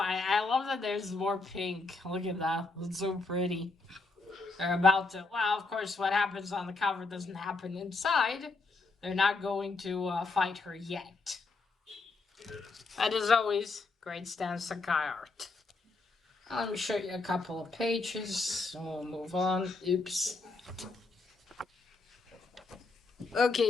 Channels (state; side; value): quieter; right; 3.7 dB